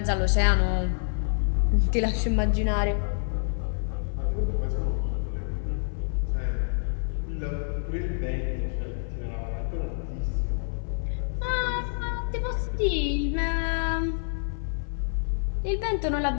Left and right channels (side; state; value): right; silent; 60 dB below the other